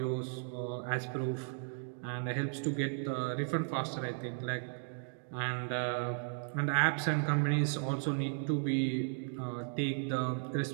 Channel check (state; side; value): silent; left; digital silence